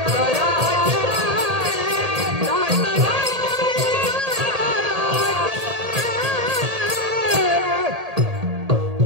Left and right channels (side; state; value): left; late; 1.8 ms